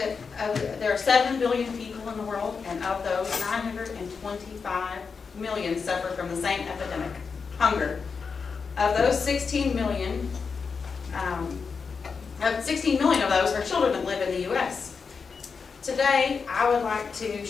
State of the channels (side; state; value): right; quieter; 5.4 dB